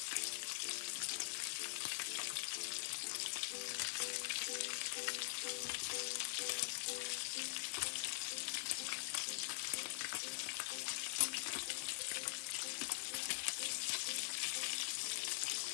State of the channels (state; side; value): silent; right; digital silence